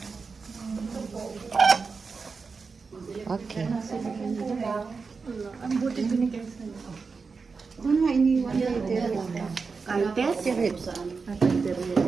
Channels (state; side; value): quieter; left; 4.8 dB